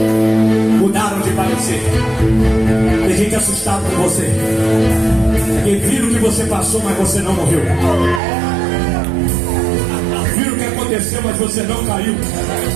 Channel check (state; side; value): drops out; left; at 8.2 s